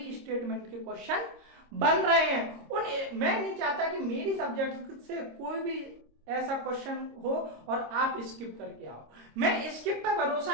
स्टेटमेंट के क्वेश्चन बन रहे हैं। मैं नहीं चाहता कि मेरी सब्जेक्ट से कोई भी ऐसा क्वेश्चन हो और आप स्किप करके आओ। मैं स्किप पर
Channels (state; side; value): late; left; 26 ms